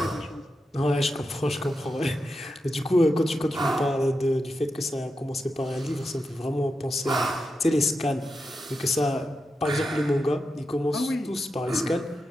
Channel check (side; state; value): both; normal; correlation 0.88